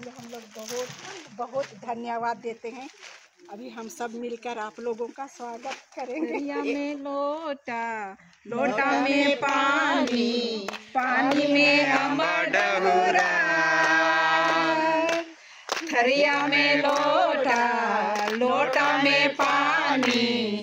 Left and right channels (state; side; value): identical; both; correlation 1.00